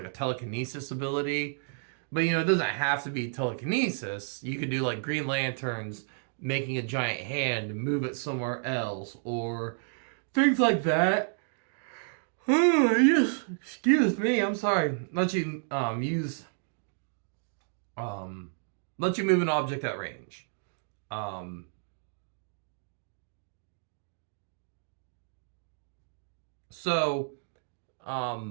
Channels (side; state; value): left; silent; digital silence